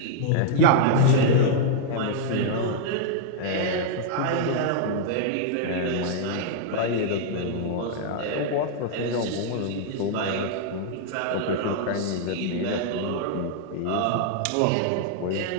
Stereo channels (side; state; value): both; different; correlation -0.01